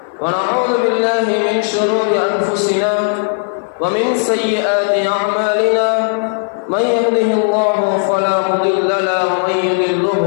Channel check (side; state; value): right; silent; 56 dB below the other